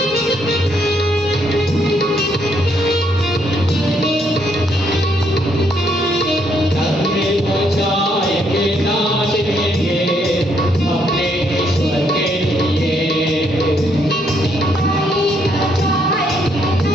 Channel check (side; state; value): both; normal; correlation 0.72